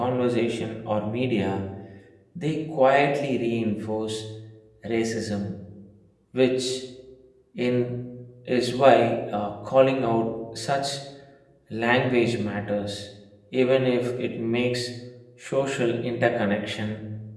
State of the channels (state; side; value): identical; both; correlation 1.00